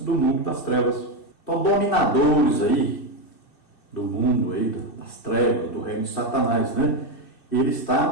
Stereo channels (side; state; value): right; late; 2.6 ms